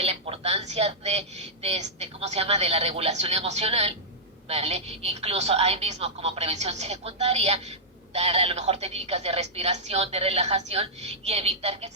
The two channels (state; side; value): normal; both; correlation -0.12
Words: la importancia ¿cómo se llama?, de la regulación emocional, ¿vale? Incluso ahí mismo como prevención secundaria, dar a lo mejor técnicas de respiración, de relajación y evitar que